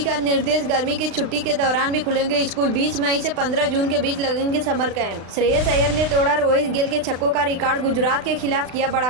का निर्देश, गर्मी की छुट्टी के दौरान भी खुलेंगे स्कूल। 20 मई से 15 जून के बीच लगेंगे समर कैंप। श्रेयस अय्यर ने तोड़ा रोहित गेल के छक्कों का रिकॉर्ड। गुजरात के खिलाफ किया बड़ा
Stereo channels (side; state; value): left; late; 36 ms